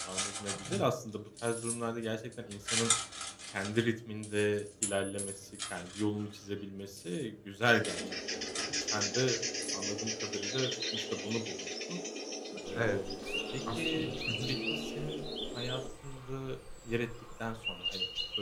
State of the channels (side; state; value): both; identical; correlation 1.00